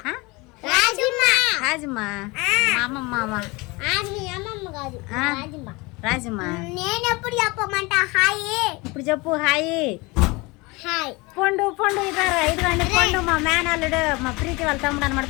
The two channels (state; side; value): quieter; right; 24.9 dB